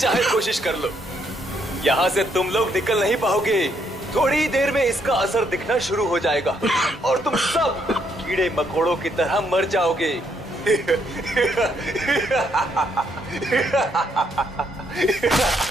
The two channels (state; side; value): normal; both; correlation 0.73